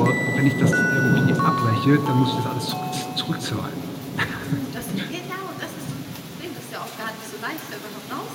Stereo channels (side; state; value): both; identical; correlation 1.00